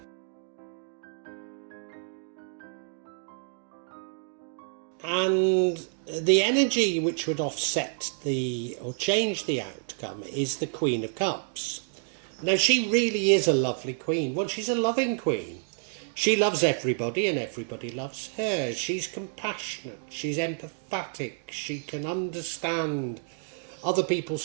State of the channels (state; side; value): silent; left; digital silence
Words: And the energy which would offset or change the outcome is the Queen of Cups. Now, she really is a lovely queen. Well, she's a loving queen. She loves everybody and everybody loves her. She's compassionate. She's empathetic. She can understand other